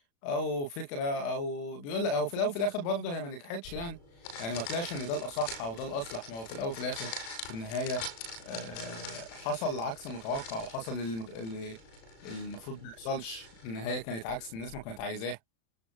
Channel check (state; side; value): late; right; 35 ms